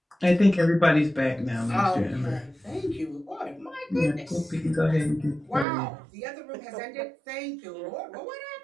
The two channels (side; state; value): left; drops out; at 5.7 s